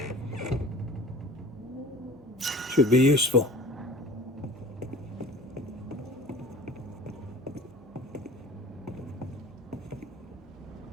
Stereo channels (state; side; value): normal; both; correlation 0.43